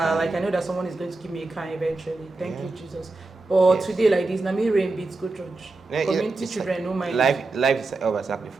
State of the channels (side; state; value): left; quieter; 3.4 dB